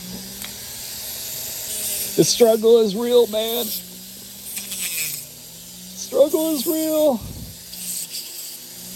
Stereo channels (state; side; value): identical; both; correlation 1.00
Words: The struggle is real, man. Struggle is real.